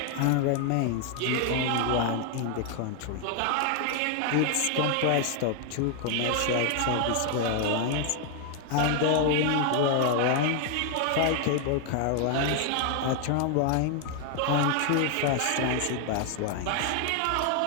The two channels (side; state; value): both; different; correlation 0.00